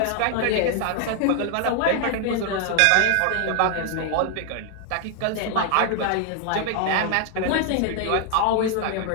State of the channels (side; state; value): both; different; correlation 0.00